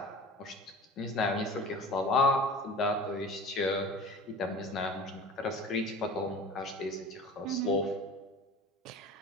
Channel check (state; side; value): normal; both; correlation 0.38